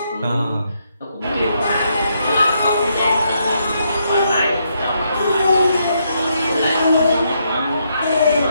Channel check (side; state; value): both; inverted; correlation -0.77